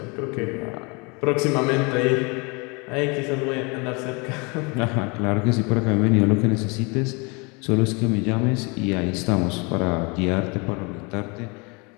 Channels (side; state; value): right; quieter; 30.0 dB